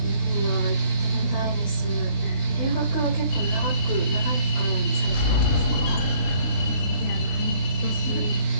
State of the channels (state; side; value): late; right; 20 ms